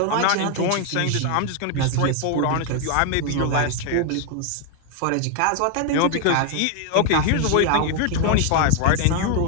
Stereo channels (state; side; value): different; both; correlation 0.00